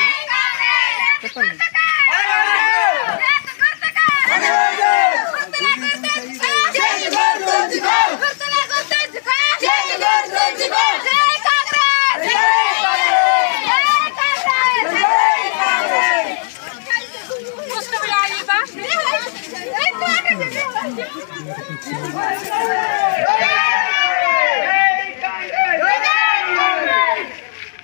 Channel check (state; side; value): silent; right; digital silence